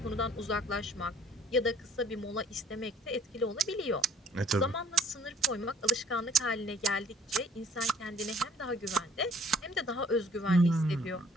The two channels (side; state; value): both; normal; correlation 0.58